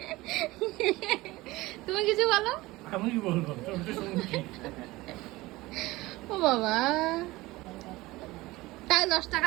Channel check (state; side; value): quieter; left; 19.8 dB